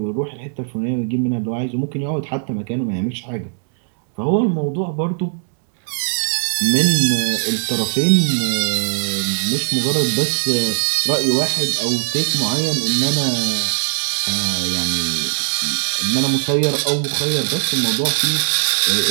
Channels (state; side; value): silent; left; digital silence